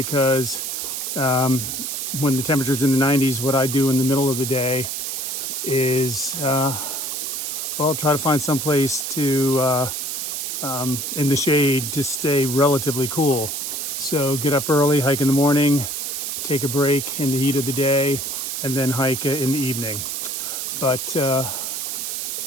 when the temperature's in the 90s, what I do in the middle of the day is, well, try to find some place to, in the shade to stay relatively cool. So get up early, hike in the morning, take a break in the heat of the day, and then hike in the evening. But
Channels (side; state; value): right; noise; hiss, 3 dB below the sound